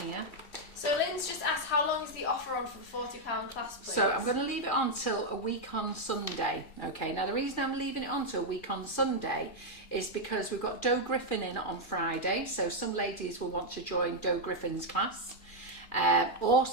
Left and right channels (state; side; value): late; right; 2.4 ms